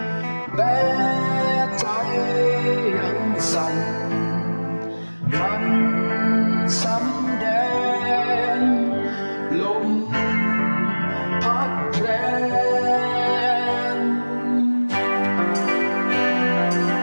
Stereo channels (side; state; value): both; inverted; correlation -1.00